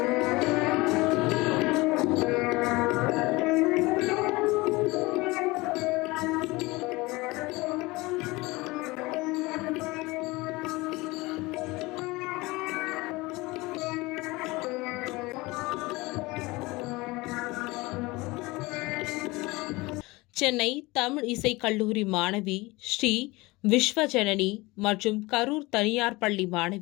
சென்னை தமிழ் இசை கல்லூரி மாணவி ஸ்ரீ விஸ்வஜனனி மற்றும் கரூர் தனியார் பள்ளி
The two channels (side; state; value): right; quieter; 22.4 dB